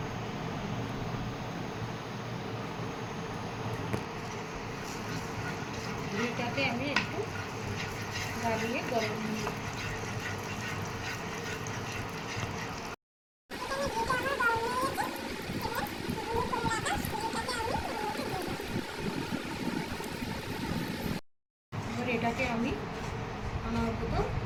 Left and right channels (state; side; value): identical; both; correlation 1.00